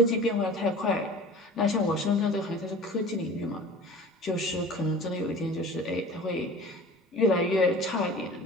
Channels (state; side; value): normal; both; correlation 0.41